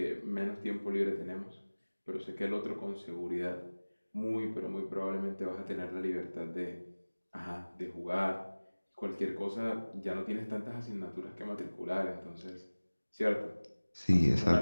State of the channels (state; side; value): inverted; both; correlation -1.00